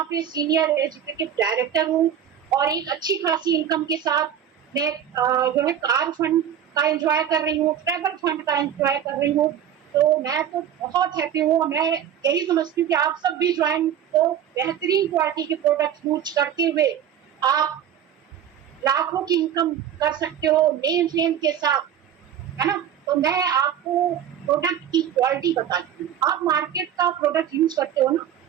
पे सीनियर एजुकेटिव डायरेक्टर हूँ और एक अच्छी खासी इनकम के साथ मैं जो है कार फंड का एंजॉय कर रही हूँ, ट्रैवल फंड का एंजॉय कर रही हूँ। तो मैं तो बहुत हैप्पी हूँ। मैं यही समझती हूँ कि आप सब भी ज्वाइन, तो बेहतरीन क्वालिटी के प्रोडक्ट यूज करते हुए आप लाखों की इनकम कर सकते हो नेम फेम के साथ, है ना। तो मैं आपको प्रोडक्ट की क्वालिटी बताती हूँ। आप मार्केट का प्रोडक्ट यूज करते हो ना,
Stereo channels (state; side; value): quieter; left; 9.5 dB